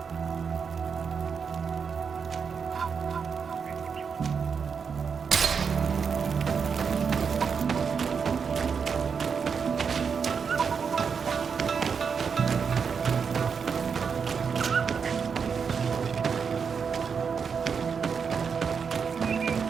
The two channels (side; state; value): left; quieter; 6.2 dB